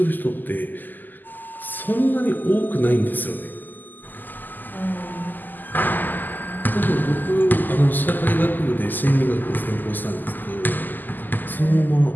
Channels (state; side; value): late; right; 0.087 ms